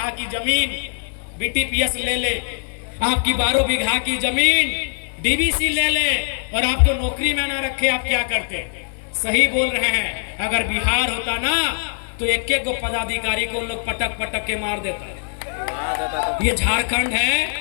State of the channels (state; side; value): silent; right; 59 dB below the other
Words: की जमीन बीटीपीएस ले ले, आपकी 12 बीघा की जमीन डीबीसी ले ले और आपको नौकरी में ना रखे, आप क्या करते? सही बोल रहे हैं। अगर बिहार होता ना तो एक एक पदाधिकारी को लोग पटक पटक के मार देता। ये झारखंड है